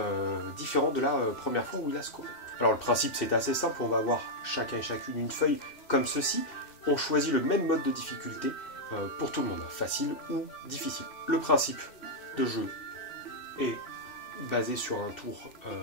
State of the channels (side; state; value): right; late; 2.6 ms